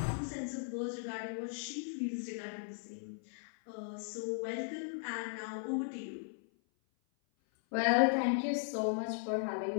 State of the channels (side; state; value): right; silent; 53 dB below the other